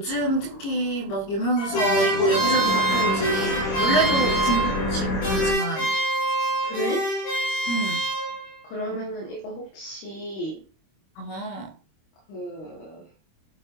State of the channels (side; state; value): right; late; 26 ms